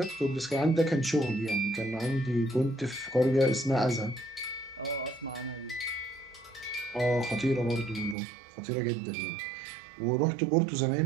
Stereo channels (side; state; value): left; drops out; at 8.2 s